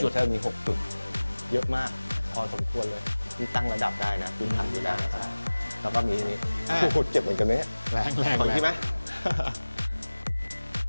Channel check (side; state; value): both; inverted; correlation -1.00